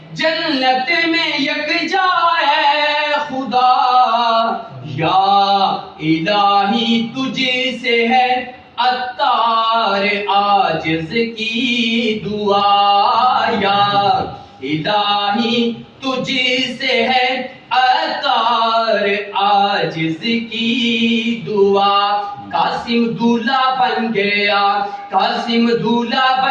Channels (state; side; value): identical; both; correlation 1.00